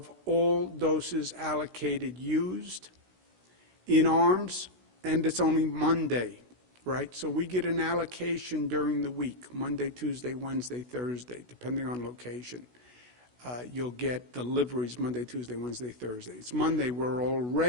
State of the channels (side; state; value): left; late; 16 ms